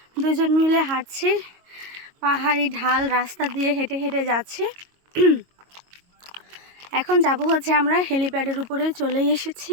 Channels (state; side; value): late; left; 22 ms